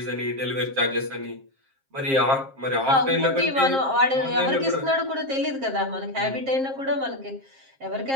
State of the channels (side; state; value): left; late; 7.5 ms